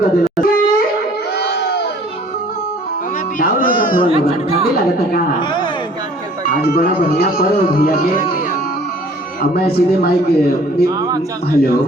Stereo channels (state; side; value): normal; both; correlation 0.53